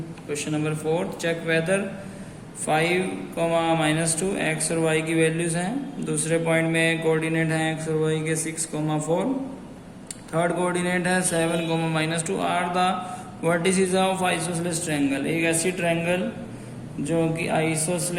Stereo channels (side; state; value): both; identical; correlation 1.00